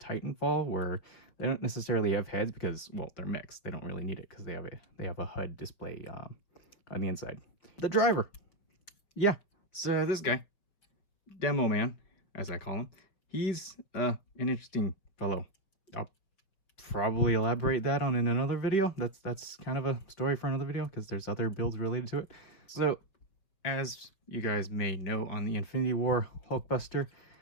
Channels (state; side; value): late; right; 5.5 ms